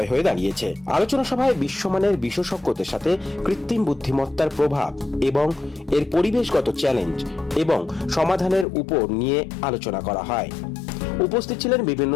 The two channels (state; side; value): drops out; right; at 8.7 s